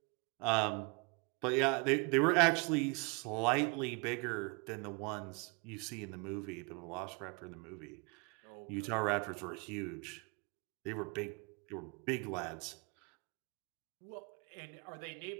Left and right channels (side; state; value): left; quieter; 31.8 dB